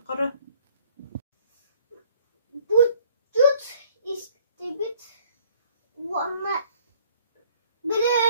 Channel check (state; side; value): inverted; both; correlation -0.59